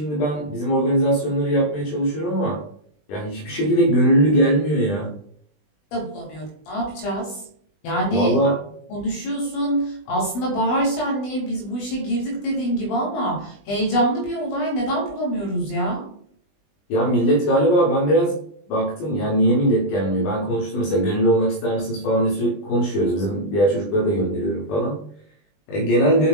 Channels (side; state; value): right; late; 20 ms